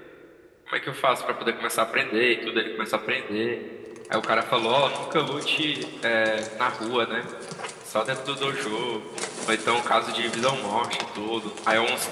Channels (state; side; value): identical; both; correlation 1.00